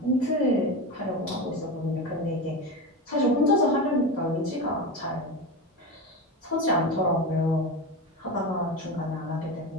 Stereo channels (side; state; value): both; normal; correlation 0.22